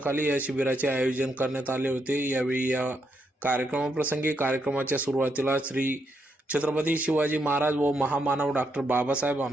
या शिबिराचे आयोजन करण्यात आले होते। यावेळी या कार्यक्रमाप्रसंगी कार्यक्रमाच्या सुरुवातीला श्री छत्रपती शिवाजी महाराज व महामानव डॉक्टर बाबासाहेब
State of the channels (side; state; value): both; normal; correlation 0.79